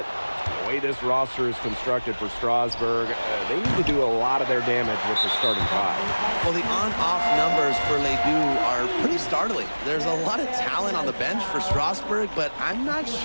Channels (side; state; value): both; inverted; correlation -1.00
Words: The way this roster is constructed for Strasburg, they need to do a lot of their damage with the starting 5. Well, the on-off numbers for Ledoux are pretty startling. There's a lot of talent on the bench for Strasburg, but I'm not